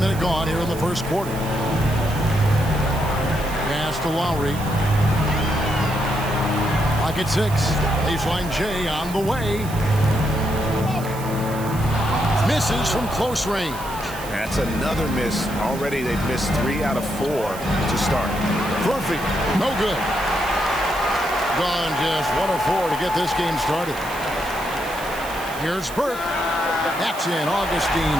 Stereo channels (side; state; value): right; noise; hiss, 15 dB below the sound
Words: gone here in the first quarter. Pass to Lowry. Pocket 6. Baseline J on the way. Misses from close range. That's another miss. Already they've missed 3 out of 4 to start. Perfect. No good. Gone just 1 of 4 to get this game started. Here's Burke. That's in.